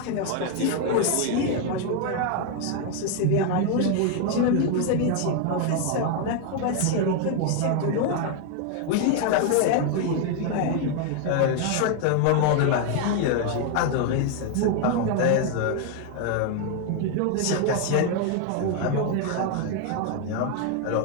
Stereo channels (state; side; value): different; both; correlation 0.01